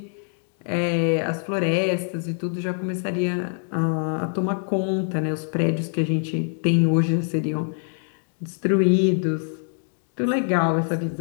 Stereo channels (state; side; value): silent; right; 62 dB below the other